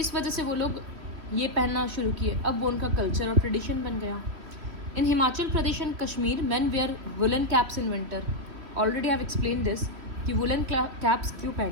वजह से वो लोग ये पहनना शुरू किए। अब वो उनका कल्चर और ट्रेडिशन बन गया। In Himachal Pradesh and Kashmir men wear woollen caps in winter. Already I have explain this कि वुलन कैप्स क्यों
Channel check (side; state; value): left; late; 2.9 ms